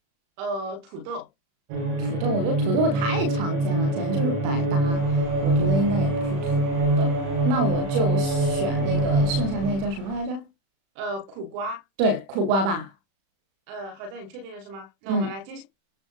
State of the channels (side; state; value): left; late; 36 ms